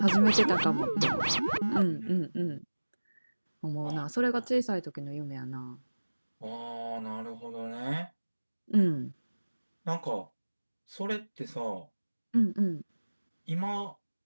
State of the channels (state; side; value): inverted; both; correlation -1.00